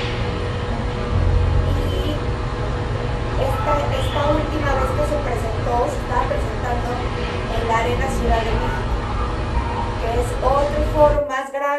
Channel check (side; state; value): both; identical; correlation 1.00